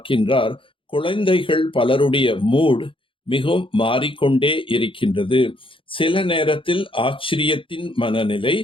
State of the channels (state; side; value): late; right; 0.25 ms